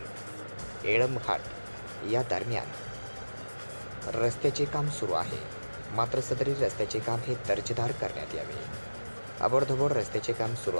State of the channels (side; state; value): both; inverted; correlation -1.00